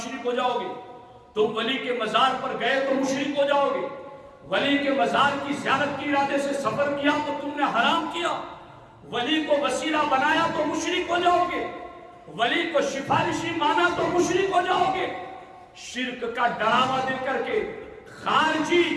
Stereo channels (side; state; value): both; identical; correlation 1.00